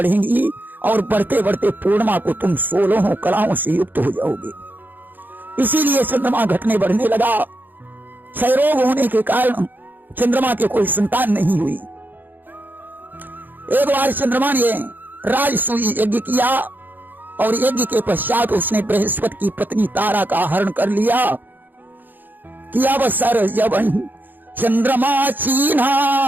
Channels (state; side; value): late; left; 0.088 ms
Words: और बढ़ते बढ़ते पूर्णिमा को तुम 16 कलाओं से युक्त हो जाओगे। इसीलिए चंद्रमा घटने बढ़ने लगा। क्षय रोग होने के कारण चंद्रमा के कोई संतान नहीं हुई। एक बार चंद्रमा ने राजसूय यज्ञ किया और यज्ञ के पश्चात उसने बृहस्पति की पत्नी तारा का हरण कर लिया। किया अवसर जबन चंद्रमा